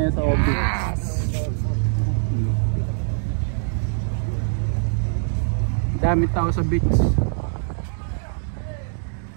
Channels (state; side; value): silent; left; 63 dB below the other